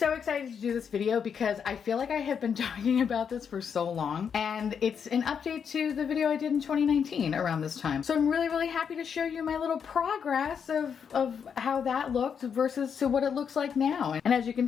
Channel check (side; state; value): right; quieter; 7.1 dB